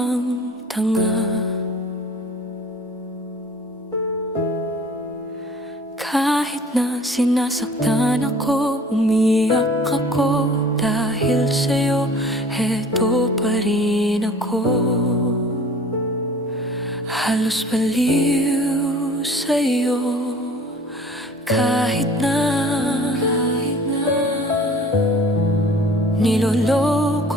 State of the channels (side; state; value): both; normal; correlation 0.48